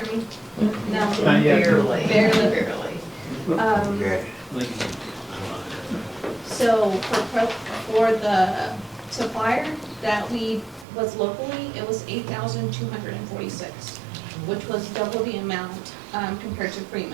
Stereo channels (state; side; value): drops out; left; at 10.9 s